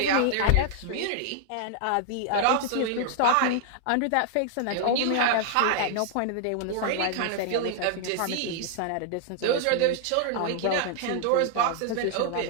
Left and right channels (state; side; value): different; both; correlation 0.00